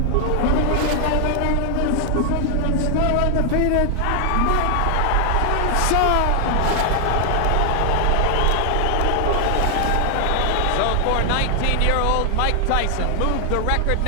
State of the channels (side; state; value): both; different; correlation 0.00